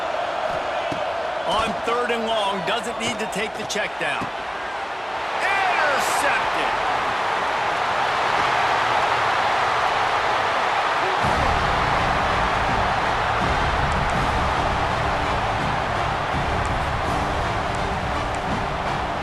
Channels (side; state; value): both; identical; correlation 1.00